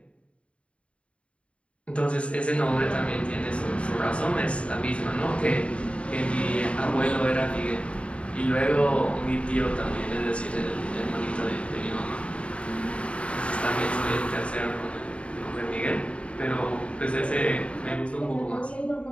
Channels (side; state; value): right; late; 0.061 ms